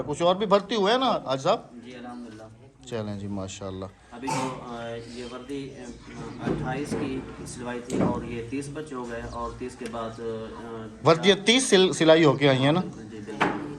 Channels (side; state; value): both; identical; correlation 1.00